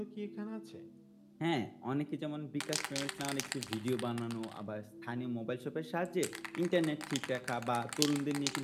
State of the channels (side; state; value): both; identical; correlation 1.00